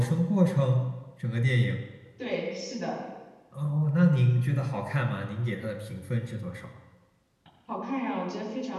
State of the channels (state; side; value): identical; both; correlation 1.00